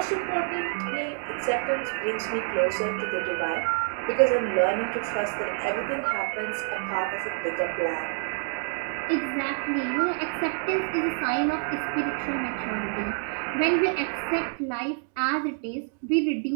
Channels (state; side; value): silent; left; 60 dB below the other